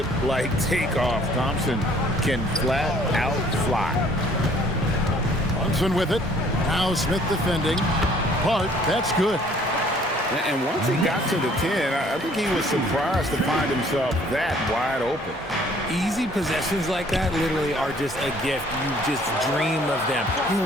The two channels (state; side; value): normal; both; correlation 0.58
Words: takeoff. Thompson can flat out fly. Thompson with it. Now Smith defending. Hart, that's good. And once he got to the 10, I think he was surprised to find himself that wide open. Easy possessions like that literally are just a gift. You just dream of them.